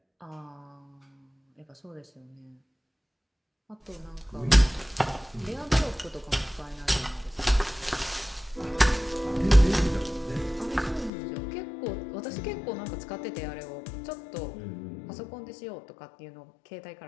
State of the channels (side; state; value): right; drops out; at 11.1 s